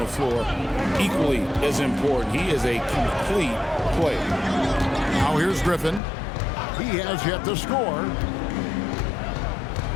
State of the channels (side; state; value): right; drops out; at 6.0 s